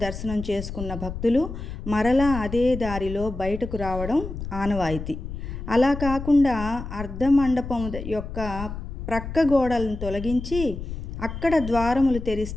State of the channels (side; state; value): left; noise; rumble, 8 dB below the sound